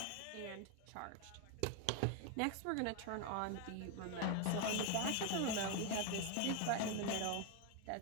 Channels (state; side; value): different; both; correlation 0.01